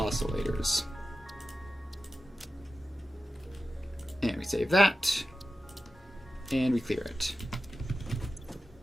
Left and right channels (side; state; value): both; normal; correlation 0.93